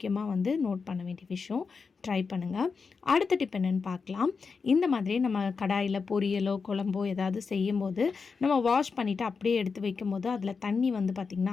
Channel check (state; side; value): quieter; right; 5.1 dB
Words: நோட் பண்ண வேண்டிய விஷயம். ட்ரை பண்ணுங்கள். அடுத்த டிப் என்னென்னு பார்க்கலாம். இந்த மாதிரி நம்ம கடாயில் பொரியலோ குழம்போ ஏதாவது செய்யும்போது நம்ம வாஷ் பண்ணிவிட்டு அப்படியே எடுத்து வைக்கும்போது அதில் தண்ணி பார்த்திங்கன்னா